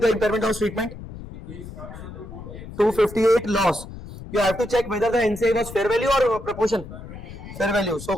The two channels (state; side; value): noise; left; rumble, 13 dB below the sound